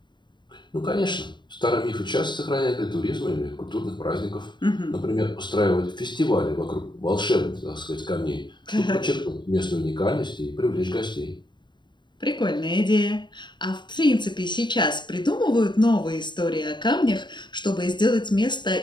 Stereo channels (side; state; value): right; late; 0.22 ms